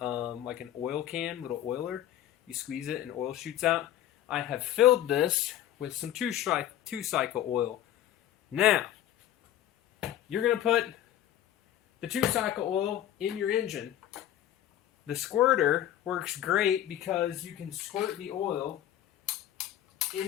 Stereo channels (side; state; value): right; quieter; 11.9 dB